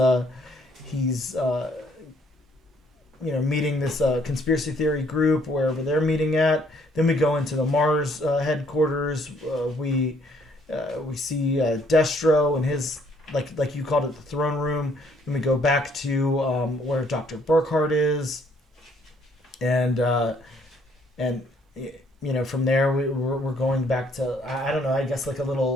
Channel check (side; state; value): both; normal; correlation 0.65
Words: meeting this conspiracy theory group wherever they're meeting at. Then we go into the Mars headquarters. We see Destro and his, like you called it, the throne room. Then we go back to where Dr. Burkhardt is, and from there we're going back to, I don't know, I guess like a